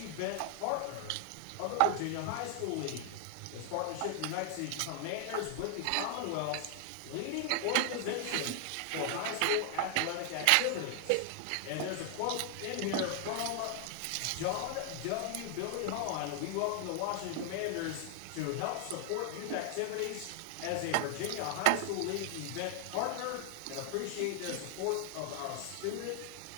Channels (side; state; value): both; different; correlation 0.00